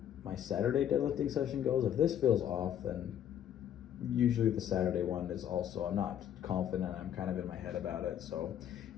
my Saturday deadlifting session goes. If this feels off, then usually the Saturday one is also, I'm not confident, I'm kind of in my head about it. So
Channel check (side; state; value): right; quieter; 10.1 dB